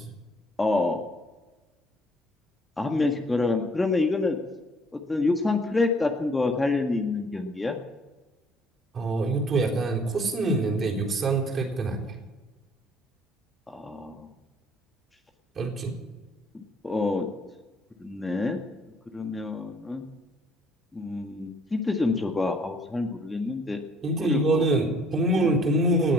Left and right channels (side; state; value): both; normal; correlation 0.59